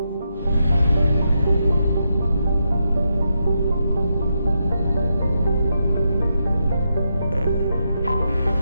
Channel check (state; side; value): inverted; both; correlation -0.83